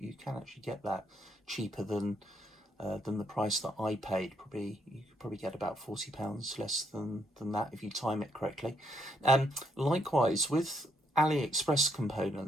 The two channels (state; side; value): normal; both; correlation 0.73